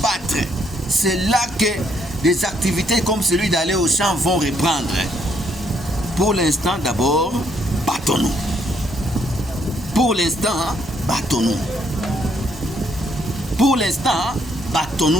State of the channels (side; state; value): both; normal; correlation 0.71